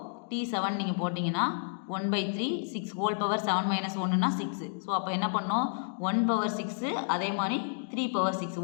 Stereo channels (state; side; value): silent; right; digital silence